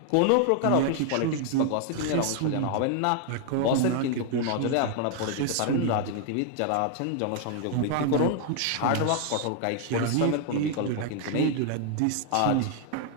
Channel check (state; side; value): different; both; correlation 0.00